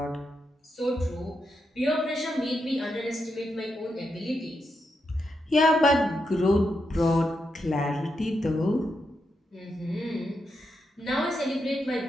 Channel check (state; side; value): normal; both; correlation 0.84